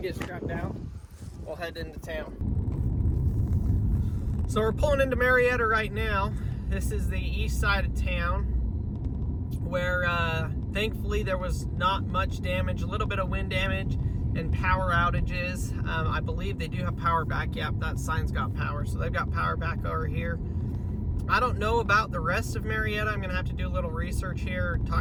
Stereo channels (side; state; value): both; identical; correlation 1.00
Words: strapped down. We'll head into town. So we're pulling into Marietta right now. This is the east side of town. where thankfully there was not much damage, a little bit of wind damage and power outages. I believe they do have power back. Yep, that sign's got power, so they've got power back over here. I don't know about the rest of Marietta. I'm gonna have to do a little research here,